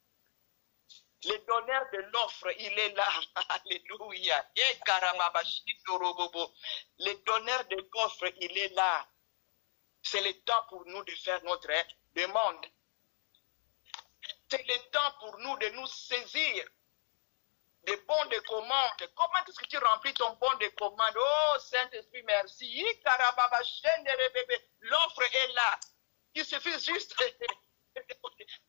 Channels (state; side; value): silent; right; 54 dB below the other